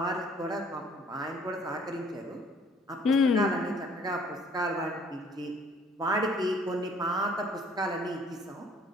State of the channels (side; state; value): both; normal; correlation 0.57